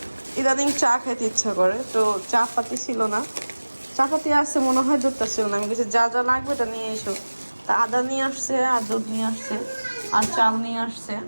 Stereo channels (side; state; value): both; inverted; correlation -1.00